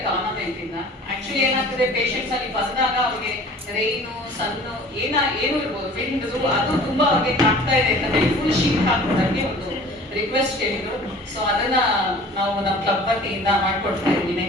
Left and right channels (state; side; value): normal; both; correlation 0.46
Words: government ಇಂದ. Actually ಏನಾಗ್ತದೆ, ಪೇಷಂಟ್ಸ್ ಅಲ್ಲಿ ಬಂದಾಗ ಅವ್ರಿಗೆ ರೈನು ಸನ್ನು ಏನು ಇರ್ಬೋದು, ವಿಂಡ್ ಅದು ತುಂಬಾ ಅವ್ರಿಗೆ ಕಾಡ್ತಾ ಇದೆ ಅಂತ ಹೇಳಿ ಫುಲ್ ಶೀಟ್ ಹಾಕೋದಕ್ಕೆ ಒಂದು ರಿಕ್ವೆಸ್ಟ್ ಕೇಳಿದ್ರು. ಸೊ ಅದನ್ನ ನಾವು ನಮ್ಮ ಕ್ಲಬ್ ವತಿಯಿಂದ ಮಾಡ್ಕೊಡ್ತಾ ಇದ್ವಿ